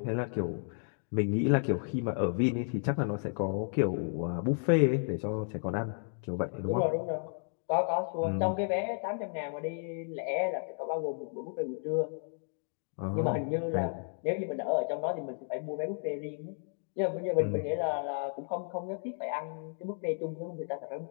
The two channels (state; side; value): silent; right; 56 dB below the other